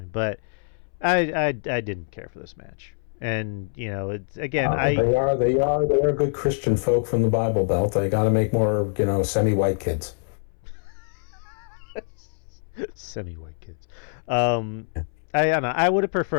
but I didn't care for this match, and it's again they are good Christian folk from the Bible Belt. They got to make more semi-white kids. Semi-white kids. I don't know. I would have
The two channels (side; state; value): right; silent; 62 dB below the other